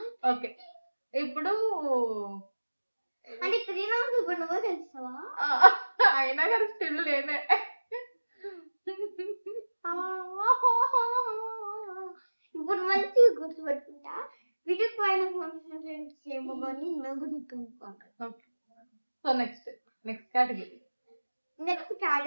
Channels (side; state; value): both; inverted; correlation -1.00